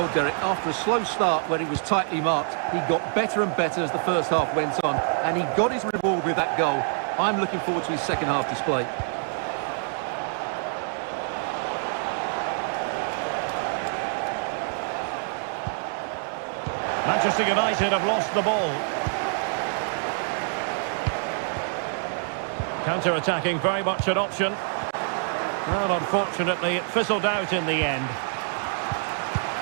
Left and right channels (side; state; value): left; silent; 61 dB below the other